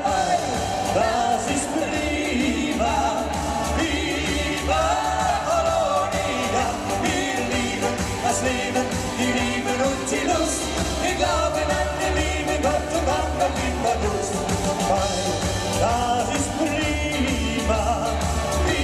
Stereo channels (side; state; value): both; identical; correlation 1.00